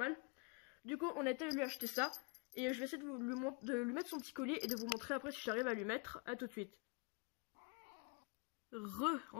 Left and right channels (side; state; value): right; quieter; 31.3 dB